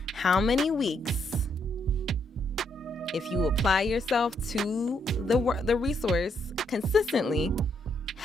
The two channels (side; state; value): both; normal; correlation 0.75